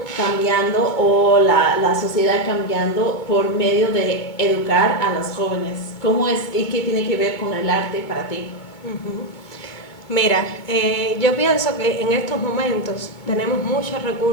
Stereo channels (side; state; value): right; late; 2.2 ms